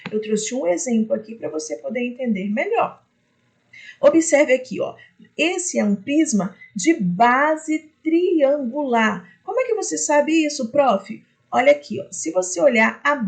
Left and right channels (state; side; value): identical; both; correlation 1.00